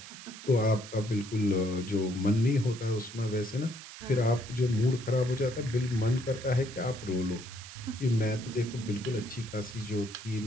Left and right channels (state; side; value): noise; right; hiss, 14 dB below the sound